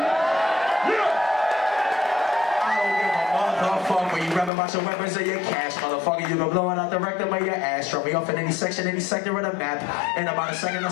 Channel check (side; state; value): right; drops out; at 4.5 s